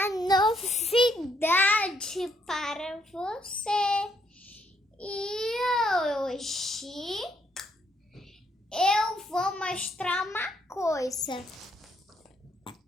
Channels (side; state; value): both; normal; correlation 0.72